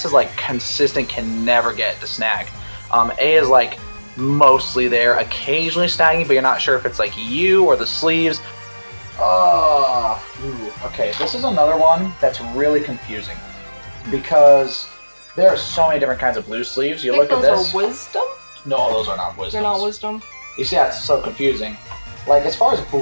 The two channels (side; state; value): both; inverted; correlation -1.00